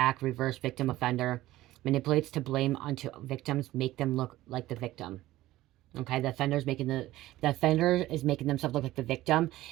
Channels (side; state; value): left; quieter; 16.1 dB